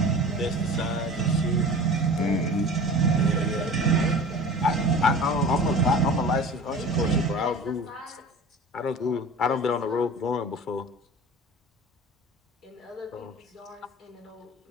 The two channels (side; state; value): both; normal; correlation 0.39